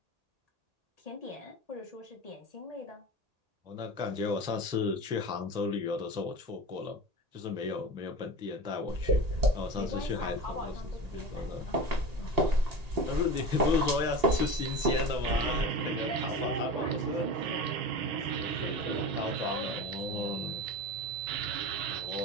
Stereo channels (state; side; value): late; left; 1.8 ms